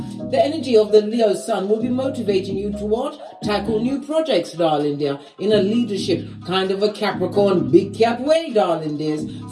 The energy of the Leo Sun will be motivating you to what? Tackle new projects, darling dear, in a leadership kind of a Capricorn big cat way, darling dears.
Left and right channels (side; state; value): both; identical; correlation 1.00